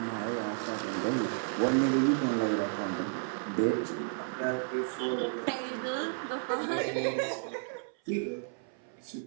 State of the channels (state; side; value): silent; left; 56 dB below the other